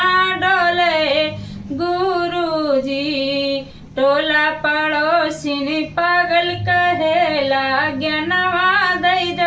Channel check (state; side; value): identical; both; correlation 1.00